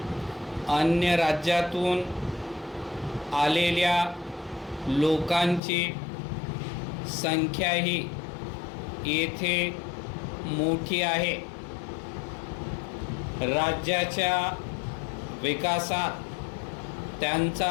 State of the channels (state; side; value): drops out; right; at 5.6 s